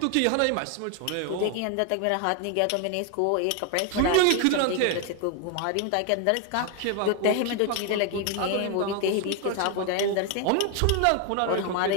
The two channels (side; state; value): both; different; correlation 0.01